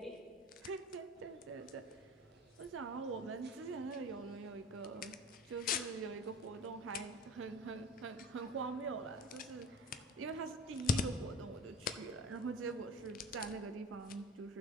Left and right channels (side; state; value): both; normal; correlation 0.38